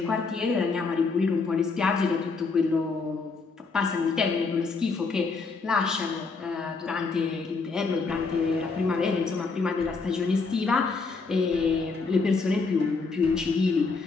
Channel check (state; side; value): quieter; right; 4.3 dB